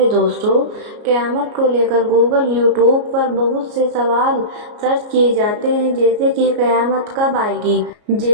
दोस्तों, क़यामत को लेकर गूगल यूट्यूब पर बहुत से सवाल सर्च किए जाते हैं, जैसे कि क़यामत कब आएगी,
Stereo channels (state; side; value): late; left; 33 ms